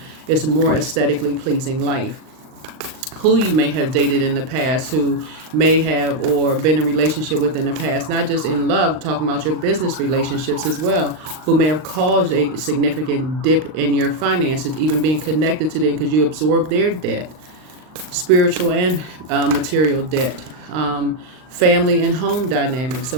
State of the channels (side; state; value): left; late; 39 ms